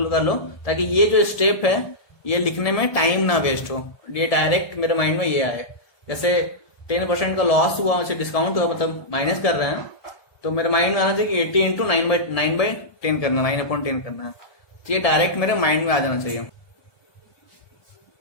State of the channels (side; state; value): right; late; 1.7 ms